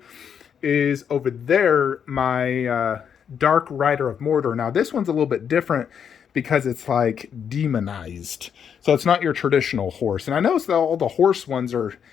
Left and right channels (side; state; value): right; quieter; 7.8 dB